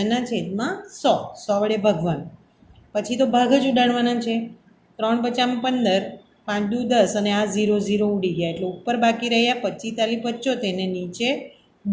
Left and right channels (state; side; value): identical; both; correlation 1.00